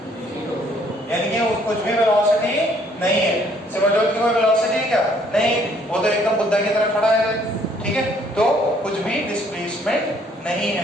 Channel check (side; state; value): both; normal; correlation 0.63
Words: यानी कि कुछ भी वेलोसिटी नहीं है, सिमरजोत की कोई वेलोसिटी है क्या, नहीं, वो तो एकदम बुद्धा की तरह खड़ा है, ठीक है, तो कुछ भी डिस्प्लेसमेंट नहीं